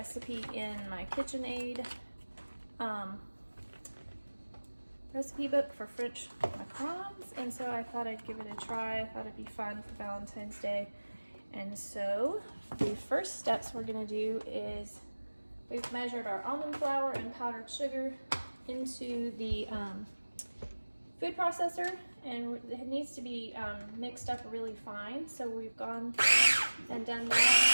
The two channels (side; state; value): both; inverted; correlation -1.00